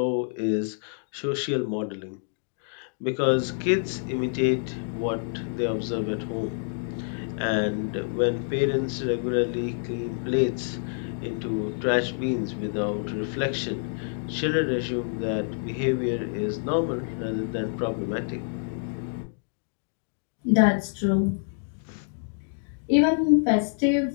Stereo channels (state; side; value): silent; right; digital silence